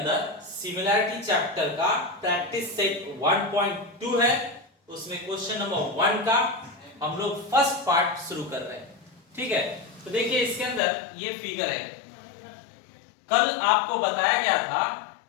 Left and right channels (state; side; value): drops out; right; at 10.8 s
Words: सिमिलैरिटी चैप्टर का प्रैक्टिस सेट 1.2 है। उसमें क्वेश्चन नंबर 1 का हम लोग फर्स्ट पार्ट शुरू कर रहे हैं। ठीक है, तो देखिए इसके अंदर ये फिगर है। कल आपको बताया गया था